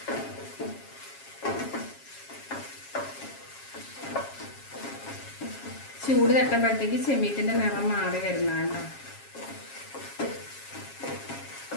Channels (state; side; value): late; right; 7.3 ms